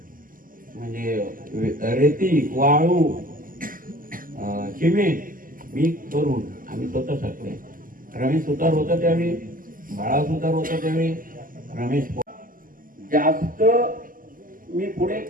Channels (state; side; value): late; left; 0.41 ms